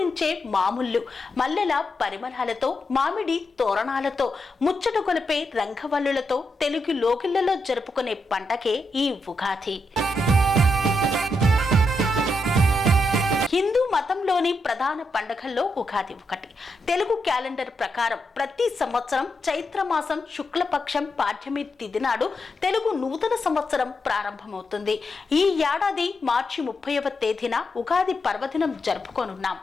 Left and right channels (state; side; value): normal; both; correlation 0.83